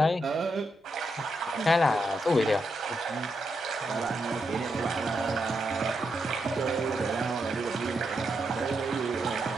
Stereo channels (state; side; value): normal; both; correlation 0.83